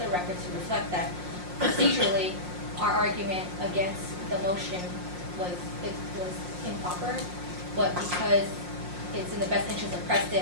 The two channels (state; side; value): late; left; 5.6 ms